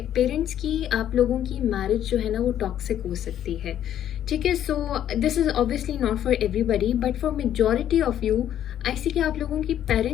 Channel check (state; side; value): quieter; right; 10.8 dB